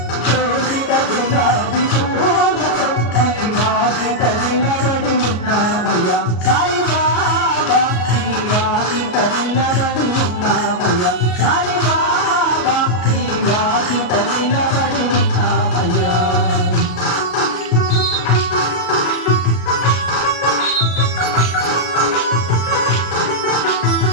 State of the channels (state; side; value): late; right; 33 ms